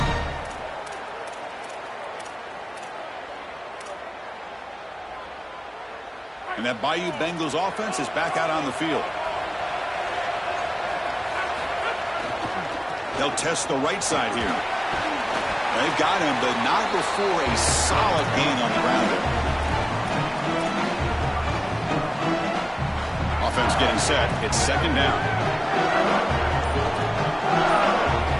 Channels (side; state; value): both; identical; correlation 1.00